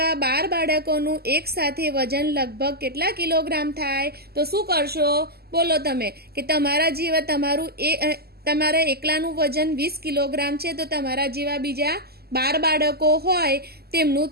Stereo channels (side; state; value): left; late; 0.46 ms